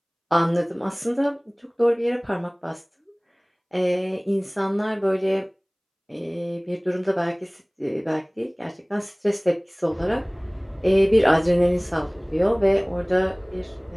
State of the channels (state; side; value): identical; both; correlation 1.00